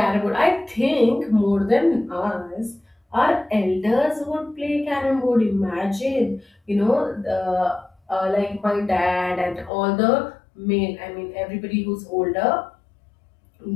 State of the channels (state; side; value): drops out; right; at 9.7 s